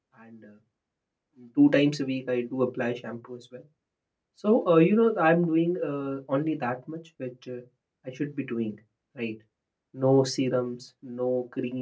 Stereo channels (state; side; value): identical; both; correlation 1.00